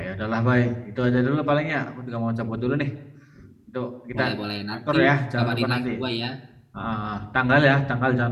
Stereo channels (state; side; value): identical; both; correlation 1.00